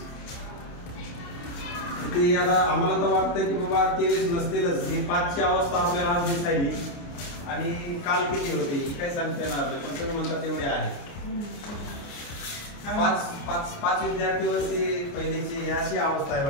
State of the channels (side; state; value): right; late; 29 ms